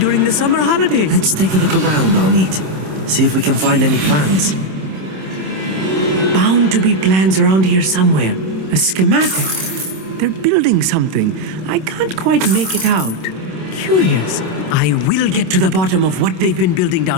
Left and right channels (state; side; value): late; left; 27 ms